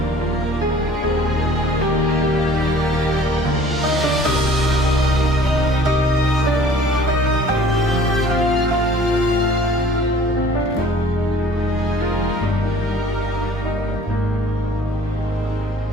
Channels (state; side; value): normal; both; correlation 0.51